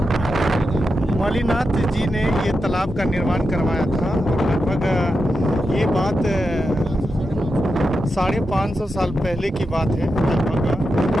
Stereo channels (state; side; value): normal; both; correlation 0.88